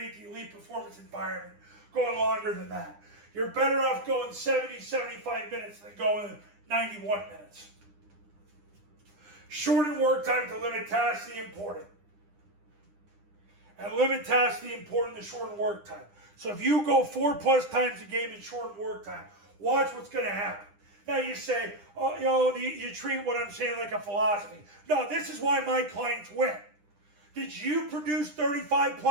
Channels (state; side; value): late; left; 9.9 ms